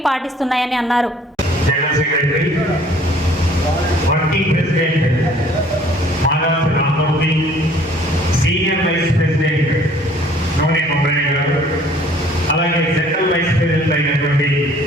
పాటిస్తున్నాయని అన్నారు. అలాగే జనరల్ వైస్ ప్రెసిడెంట్ అయినటువంటి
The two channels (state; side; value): normal; both; correlation 0.56